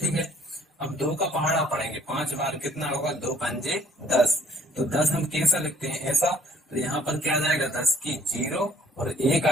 है। अब 2 का पहाड़ा पढ़ेंगे 5 बार, कितना होगा, 2 पंजे 10, तो 10 हम कैसा लिखते हैं, ऐसा। तो यहाँ पर क्या आ जाएगा, 10 की 0, और 1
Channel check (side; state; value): both; normal; correlation 0.59